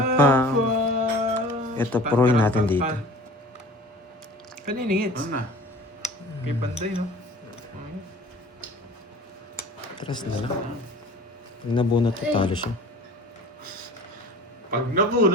pa. Ito, proin natin dito. Kaniningits. Ano na? Kay Panday, no? Tras na lang. Pag nabunot to, talo siya. Pag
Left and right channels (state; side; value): normal; both; correlation 0.43